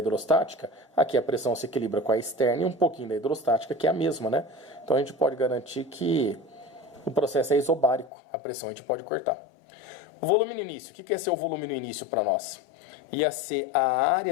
Aqui a pressão se equilibra com a externa e um pouquinho da hidrostática, que é a mesma, né? Então a gente pode garantir que o processo é isobárico. A pressão a gente pode cortar. O volume no início. O que ia ser o volume no início para nós? Ia ser a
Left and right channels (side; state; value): right; drops out; at 8.1 s